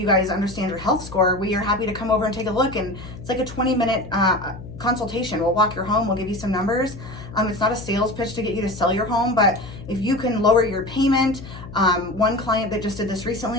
guys understand your health score. We are happy to come over and take a look, and it's like a 20-minute consultation. We'll walk your home, we'll give you some numbers. It's not a sales pitch to get you to sell your home, but if you can lower your payment, one client that just did this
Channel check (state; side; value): noise; left; hum, 14 dB below the sound